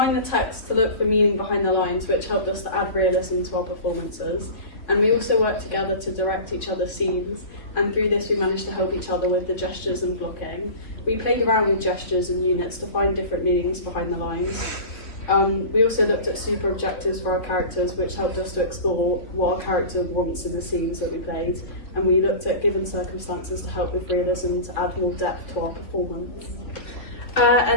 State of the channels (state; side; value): late; right; 3.2 ms